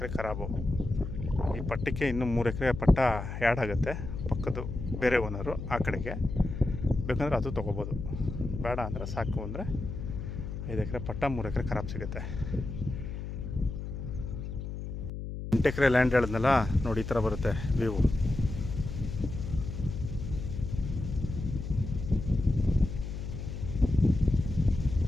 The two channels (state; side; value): noise; left; hum, 7 dB below the sound